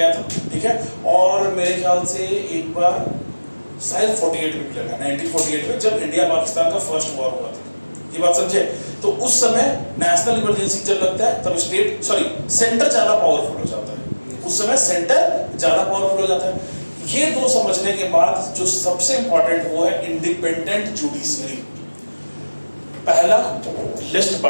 था, ठीक है। और मेरे ख्याल से एक बार शायद 48 में भी लगा, 1948 में, जब इंडिया पाकिस्तान का फर्स्ट वॉर हुआ था। ये बात समझे? तो उस समय नेशनल इमरजेंसी जब लगता है तब सेंटर ज्यादा पावरफुल हो जाता है, उस समय सेंटर ज्यादा पावरफुल हो जाता है। ये दो समझने के बाद जो सबसे इंपॉर्टेंट वो है इंडिपेंडेंट जुडिशरी। पहला लिस्ट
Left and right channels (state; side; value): inverted; both; correlation -1.00